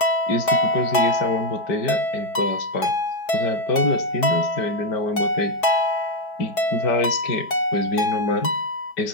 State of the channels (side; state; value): right; late; 4.7 ms